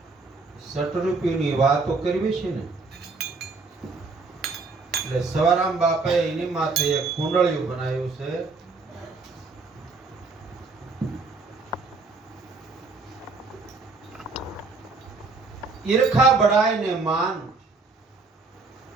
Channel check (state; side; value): quieter; left; 4.0 dB